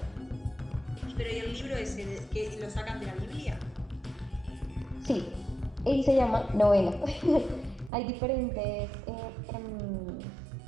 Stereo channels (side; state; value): left; drops out; at 7.9 s